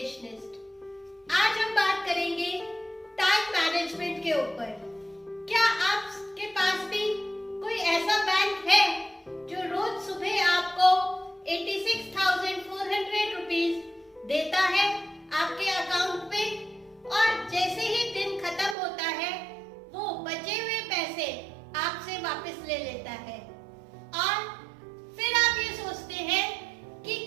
आज हम बात करेंगे टाइम मैनेजमेंट के ऊपर। क्या आपके पास भी कोई ऐसा बैंक है जो रोज सुबह आपको 86,400 रुपीज देता है आपके अकाउंट पे, और जैसे ही दिन खत्म होता है वो बचे हुए पैसे आपसे वापस ले लेता है, और फिर आप ये सोचते हैं कि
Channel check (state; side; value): drops out; left; at 18.8 s